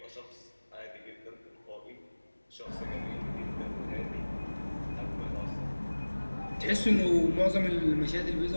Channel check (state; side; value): inverted; both; correlation -1.00